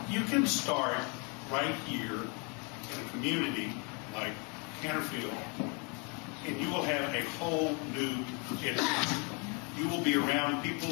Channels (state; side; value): quieter; right; 34.2 dB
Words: you can start right here in a community like Canterfield, and you will have a whole new experience. You will be around people